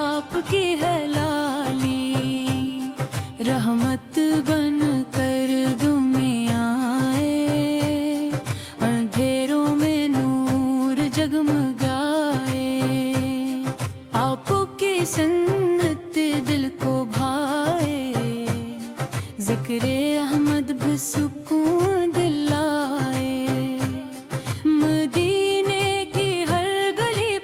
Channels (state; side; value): identical; both; correlation 1.00